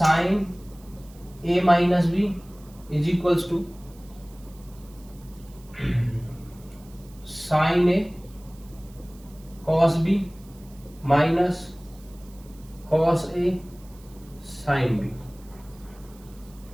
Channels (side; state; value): right; noise; hiss, 26 dB below the sound